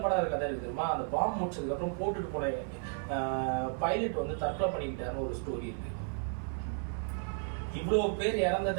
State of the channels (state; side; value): silent; left; 55 dB below the other